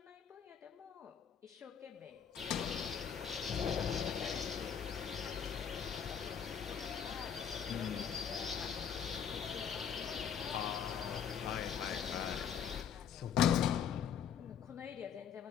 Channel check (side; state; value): right; quieter; 7.8 dB